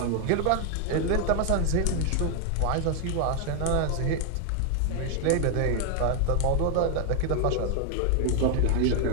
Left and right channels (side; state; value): both; different; correlation 0.00